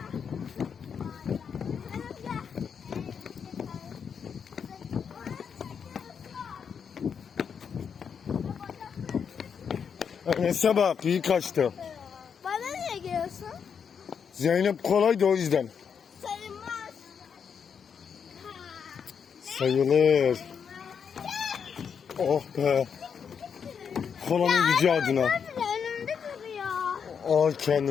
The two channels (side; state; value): right; quieter; 6.9 dB